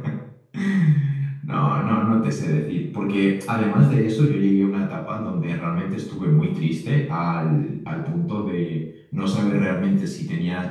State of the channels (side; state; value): both; identical; correlation 1.00